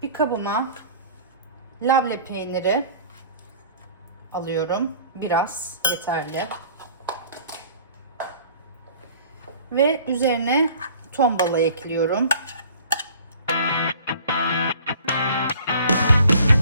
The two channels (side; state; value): both; inverted; correlation -0.49